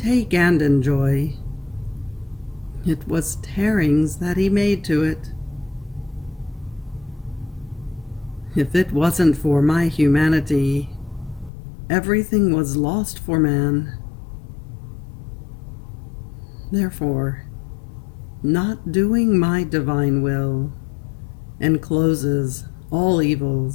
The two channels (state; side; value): drops out; right; at 11.5 s